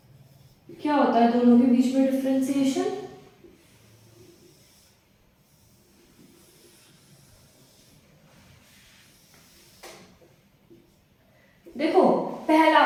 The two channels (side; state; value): both; identical; correlation 1.00